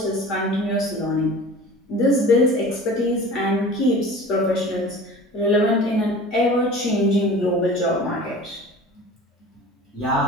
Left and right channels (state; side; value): normal; both; correlation 0.40